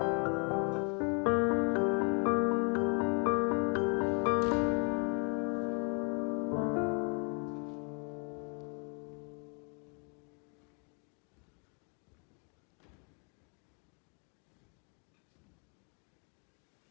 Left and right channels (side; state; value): right; quieter; 37.4 dB